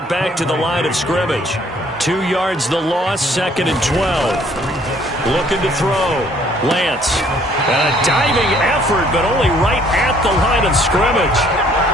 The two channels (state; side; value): normal; both; correlation 0.61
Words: back to the line of scrimmage. 2 yards the loss, 2nd and 12. Looking to throw. Lance. A diving effort, but only right at the line of scrimmage.